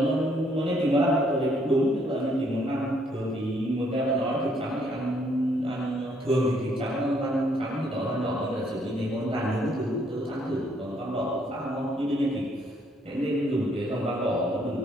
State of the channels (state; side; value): normal; both; correlation 0.68